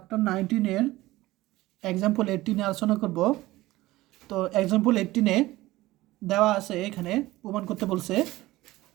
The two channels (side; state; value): left; quieter; 17.9 dB